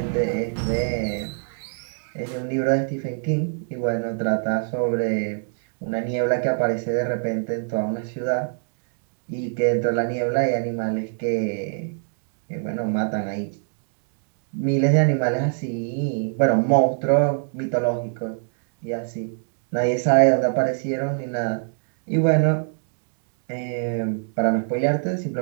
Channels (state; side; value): silent; left; digital silence